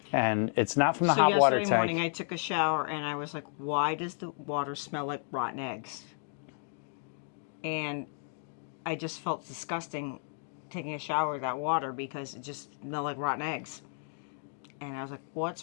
And it's not from the hot water tank. So yesterday morning I took a shower and I was like, why does the water smell like rotten eggs? And I just felt disgusting taking a shower with that water because it just smelled like rotten eggs. And I was like,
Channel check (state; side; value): silent; right; 56 dB below the other